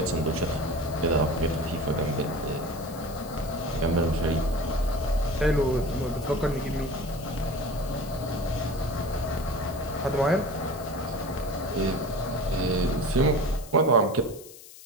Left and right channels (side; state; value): left; noise; hiss, 18 dB below the sound